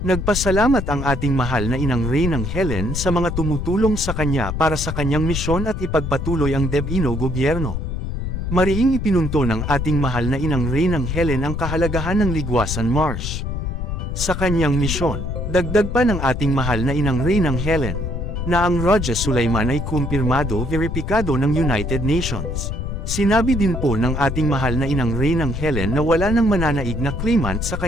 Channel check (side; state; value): left; noise; rumble, 3 dB below the sound